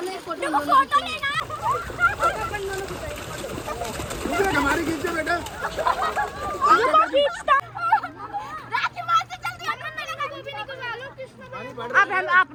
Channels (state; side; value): identical; both; correlation 1.00